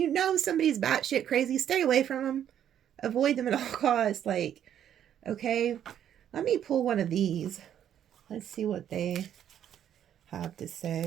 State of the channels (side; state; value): left; quieter; 10.0 dB